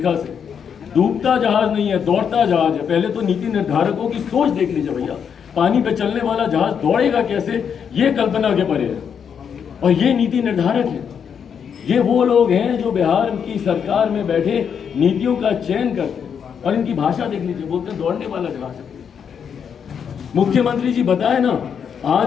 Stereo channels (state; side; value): quieter; right; 7.4 dB